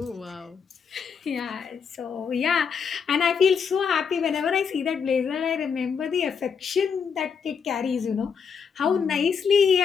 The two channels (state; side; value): quieter; right; 6.4 dB